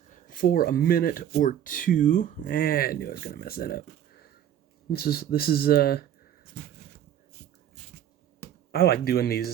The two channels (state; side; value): quieter; left; 10.5 dB